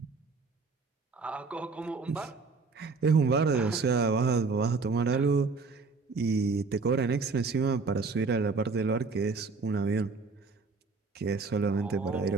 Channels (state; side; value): quieter; left; 4.3 dB